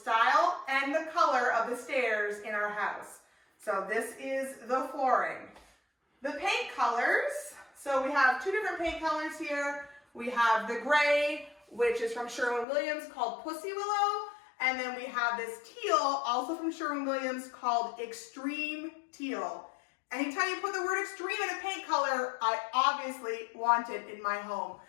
and the color of the stairs in our house. So this is the flooring. The paint colors. So we have two different paint colors here. We have the gray, which is from Sherwin-Williams, called Pussy Willow. And then we have this teal, also from Sherwin-Williams, called Extreme Teal. Anytime you put the word extreme in a paint color, I obviously want it in my home.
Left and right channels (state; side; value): drops out; right; at 12.7 s